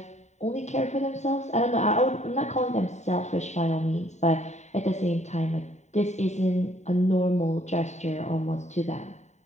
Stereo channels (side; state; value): right; late; 0.34 ms